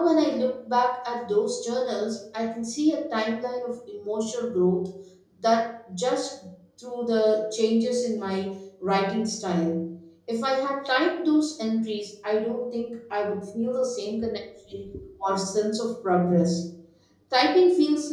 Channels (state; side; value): identical; both; correlation 1.00